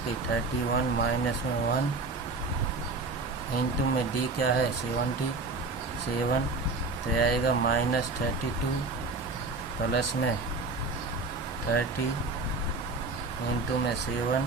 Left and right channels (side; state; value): left; quieter; 3.6 dB